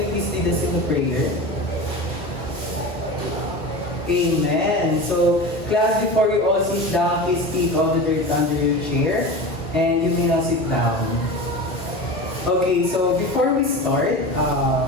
you please lead us in the prayer? Amen. So, class, before you all sit down, please take all the dirt under your chair and you may now sit down. Okay, so before we start,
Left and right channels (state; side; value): normal; both; correlation 0.29